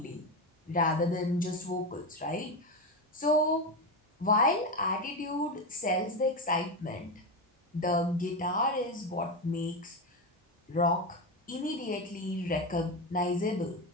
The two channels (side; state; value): both; normal; correlation 0.15